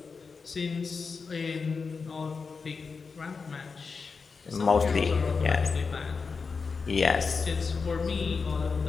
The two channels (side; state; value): right; quieter; 4.9 dB